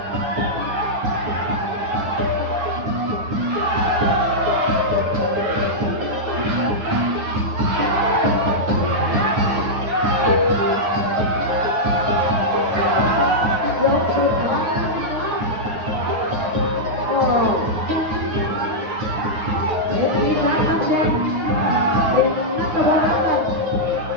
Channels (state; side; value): late; left; 9.6 ms